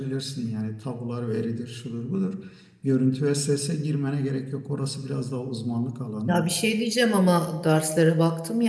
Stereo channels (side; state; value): both; identical; correlation 1.00